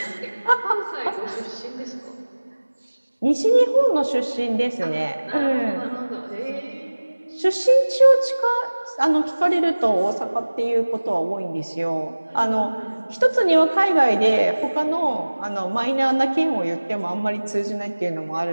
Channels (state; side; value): inverted; both; correlation -1.00